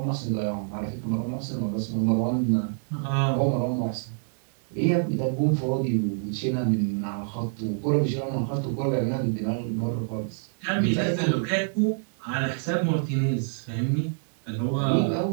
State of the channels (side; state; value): left; silent; digital silence